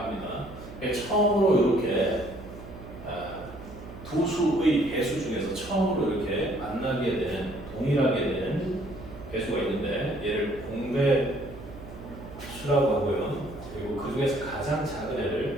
처음으로 이렇게 두 수의 배수 중에서 처음으로 이렇게 만나게 된, 동일하게 된 배수가 있는데 얘를 공배수라고 하고요. 그리고 그 중에서 가장 작은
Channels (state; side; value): noise; right; hum, 14 dB below the sound